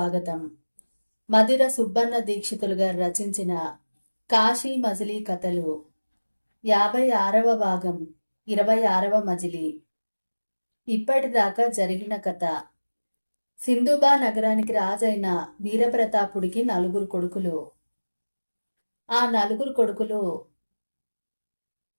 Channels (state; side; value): inverted; both; correlation -1.00